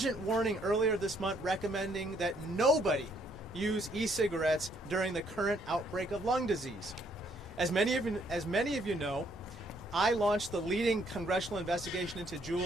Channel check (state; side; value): normal; both; correlation 0.68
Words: warning earlier this month recommending that nobody use e-cigarettes during the current outbreak of lung disease. As many of you know, I launched the leading congressional investigation into